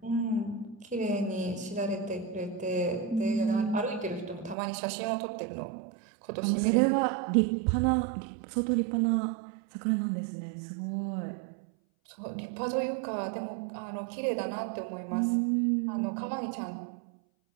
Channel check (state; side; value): drops out; left; at 4.5 s